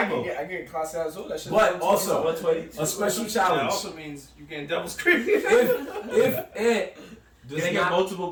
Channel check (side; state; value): both; identical; correlation 1.00